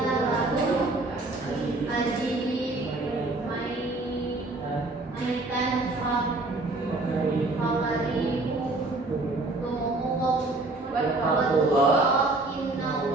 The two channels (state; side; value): quieter; left; 3.0 dB